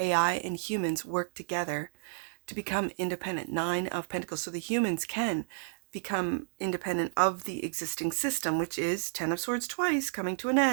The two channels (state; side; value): silent; left; digital silence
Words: and humans work together to become independent? 9 of Pentacles. So the humans can become independent of the existing system, which is 10 of Swords twice, coming to an